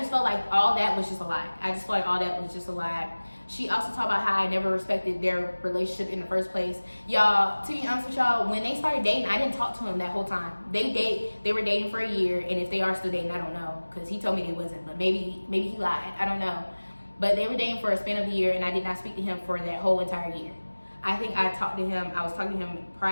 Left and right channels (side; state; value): both; inverted; correlation -1.00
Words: felt like all that was just a lie. She also talked about how I never respected their relationship in the first place. Y'all, to be honest with y'all, when they started dating, I didn't talk to him that whole time. They were dating for a year, and if they are still dating, I don't know, because he told me they wasn't, but maybe he lied. I don't know. But they were dating for a span of a year, and I did not speak to him for that whole entire year. I think I was talking to him